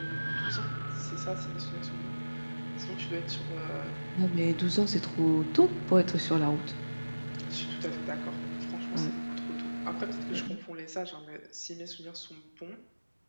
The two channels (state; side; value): inverted; both; correlation -1.00